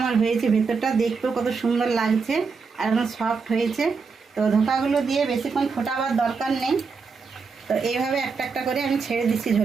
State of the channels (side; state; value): left; quieter; 5.0 dB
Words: আমার হয়েছে, ভিতরটা দেখতেও কত সুন্দর লাগছে আর একদম সফট হয়েছে। তো ধোকাগুলো দিয়ে বেশিক্ষণ ফোটাবার দরকার নেই। তো এইভাবে একটা একটা করে আমি ছেড়ে দিচ্ছি